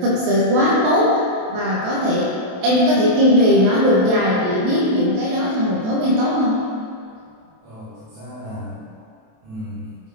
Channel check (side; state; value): left; late; 27 ms